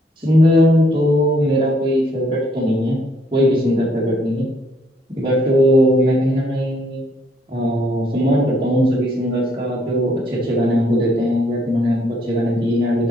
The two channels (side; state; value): both; normal; correlation 0.68